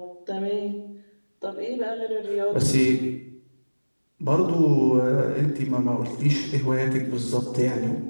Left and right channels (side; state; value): both; inverted; correlation -1.00